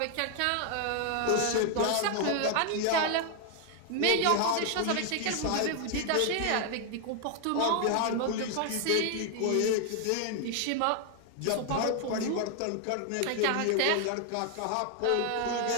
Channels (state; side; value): different; both; correlation 0.00